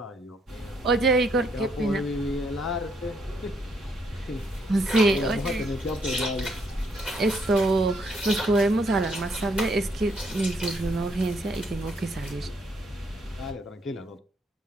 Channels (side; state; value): both; normal; correlation 0.72